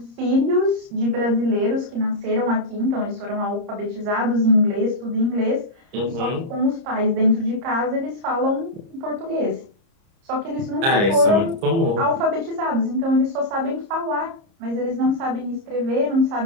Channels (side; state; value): left; late; 30 ms